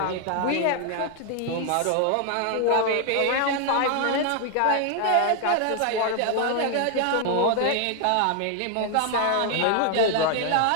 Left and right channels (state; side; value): different; both; correlation 0.00